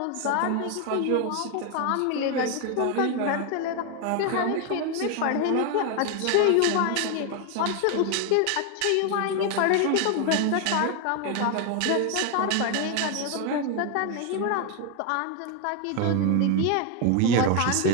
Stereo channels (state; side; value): different; both; correlation 0.01